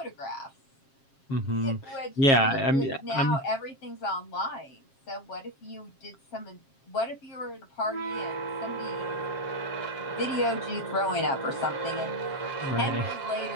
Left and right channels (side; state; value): right; late; 7.4 ms